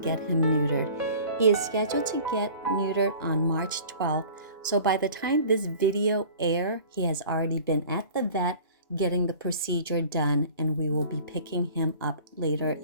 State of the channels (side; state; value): both; inverted; correlation -0.45